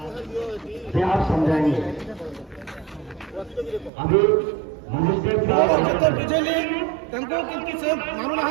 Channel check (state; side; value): drops out; left; at 3.9 s